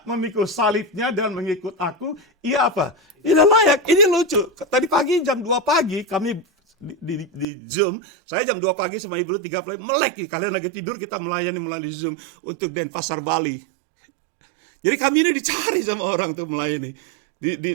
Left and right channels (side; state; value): left; drops out; at 7.5 s